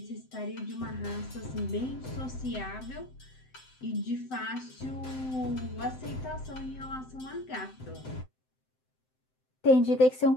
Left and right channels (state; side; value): late; right; 7.8 ms